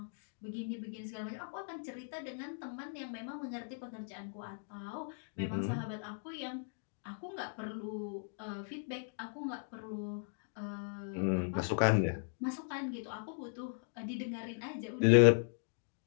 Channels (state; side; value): silent; right; digital silence